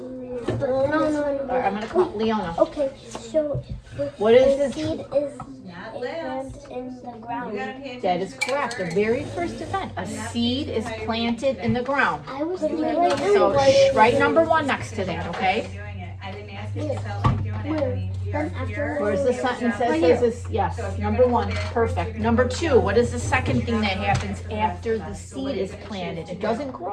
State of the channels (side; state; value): both; identical; correlation 1.00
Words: No. All right, I'm gonna call Leona. Okay, so What is the this? seed is Not a last. plant in the You ground. gotta pay attention. That is correct. The very first event, a seed is planted in the ground. I was doing So write number 1 next to that, okay? Doing it. I didn't ask if you felt like doing it, honey. Then after Where's the sentence that says this? Yes, number 1, perfect. Number 2, what is the second thing that happens after the seed is planted? It doesn't